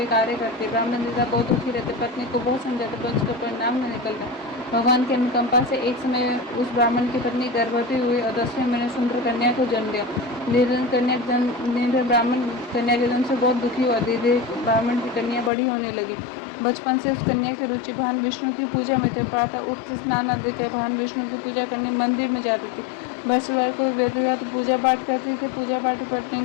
कार्य करती। ब्राह्मण नेता बहुत दुखी रहते, पत्नी को बहुत समझाते, पर उसका परिणाम न निकलता। भगवान की अनुकंपा से एक समय उस ब्राह्मण की पत्नी गर्भवती हुई और 10वें महीने सुंदर कन्या को जन्म दिया। निर्धन ब्राह्मण कन्या के जन्म से बहुत दुखी हुआ। धीरे ब्राह्मण की कन्या बड़ी होने लगी। बचपन से उस कन्या की रुचि भगवान विष्णु की पूजा में थे। प्रातः उठते स्नान आदि कर भगवान विष्णु की पूजा करने मंदिर में जाती थी। बृहस्पतिवार को विधिवत पूजा पाठ करती थी। पूजा पाठ करने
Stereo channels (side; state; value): right; drops out; at 15.5 s